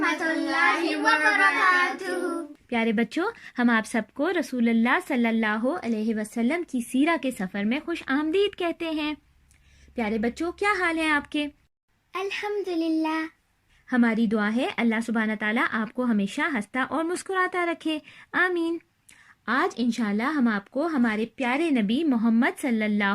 اللہ وبرکاتہ۔ پیارے بچوں، ہم آپ سب کو رسول اللہ صلی اللہ علیہ وسلم کی سیرہ کے سفر میں خوش آمدید کہتے ہیں۔ پیارے بچوں، کیا حال ہیں آپ کے؟ الحمدللہ۔ ہماری دعا ہے اللہ سبحانہ تعالیٰ آپ کو ہمیشہ ہنستا اور مسکراتا رکھے، آمین۔ آج انشاءاللہ ہم آپ کو ہمارے پیارے نبی محمد صلی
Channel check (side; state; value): both; identical; correlation 1.00